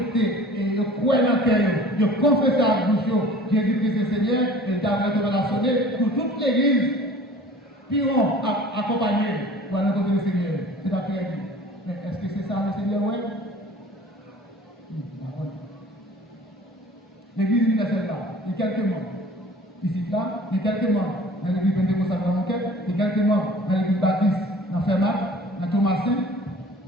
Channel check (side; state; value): both; normal; correlation 0.46